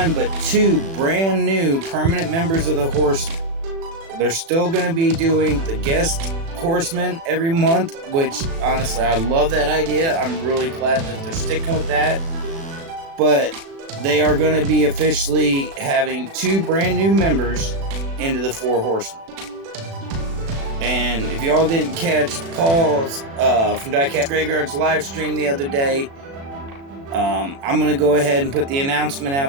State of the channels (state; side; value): late; left; 36 ms